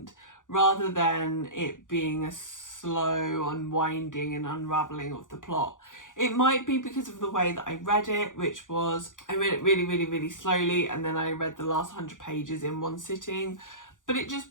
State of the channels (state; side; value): late; right; 0.87 ms